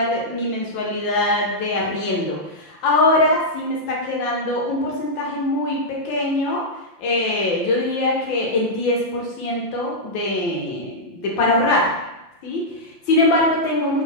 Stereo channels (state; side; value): late; right; 5.8 ms